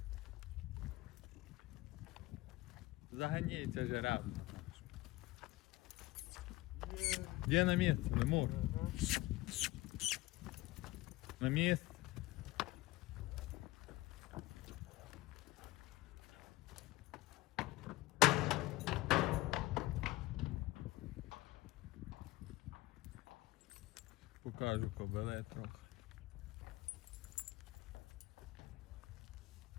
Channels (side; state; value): right; quieter; 19.2 dB